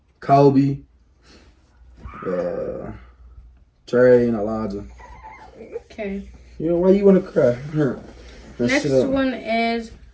Kobe, Trey, and Elijah. Okay. Why you want to cry? Next one is,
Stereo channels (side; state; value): both; identical; correlation 1.00